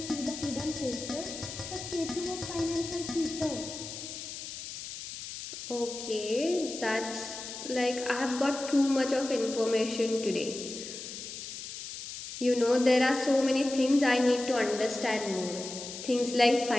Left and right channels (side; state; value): left; noise; hiss, 9 dB below the sound